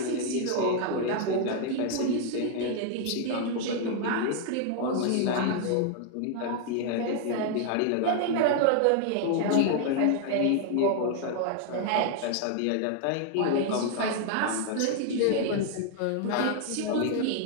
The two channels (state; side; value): different; both; correlation 0.00